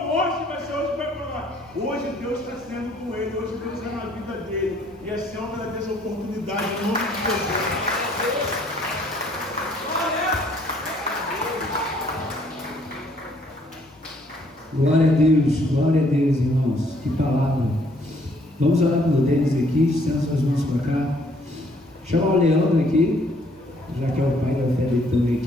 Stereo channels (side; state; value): both; normal; correlation 0.64